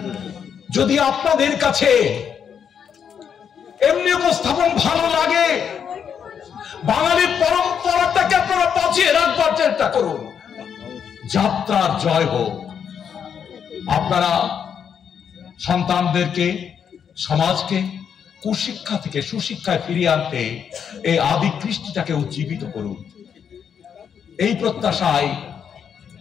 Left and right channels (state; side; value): quieter; right; 7.7 dB